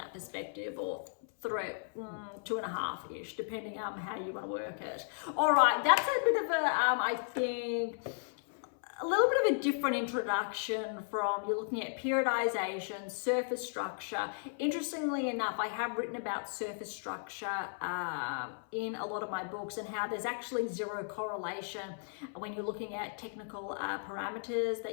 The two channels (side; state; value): right; silent; 54 dB below the other